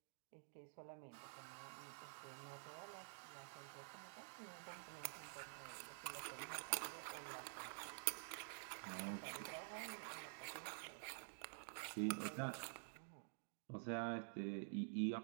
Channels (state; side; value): silent; left; digital silence